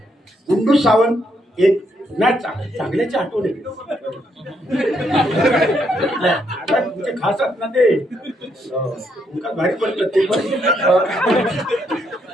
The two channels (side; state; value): both; normal; correlation 0.75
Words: गुंडू सावंत एक नाही चांगल्याची आठवण आहे तुमचे खास आहेत ना ते तुमका भारी पडतं ते पण